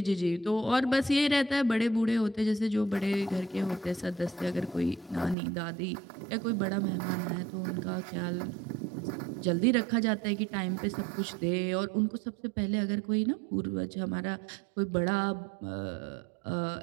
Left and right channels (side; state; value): left; drops out; at 5.4 s